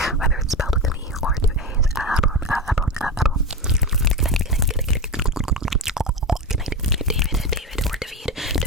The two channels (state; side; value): normal; both; correlation 0.20